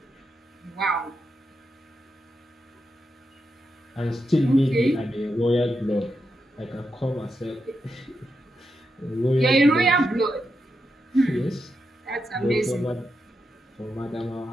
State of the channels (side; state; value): both; normal; correlation 0.86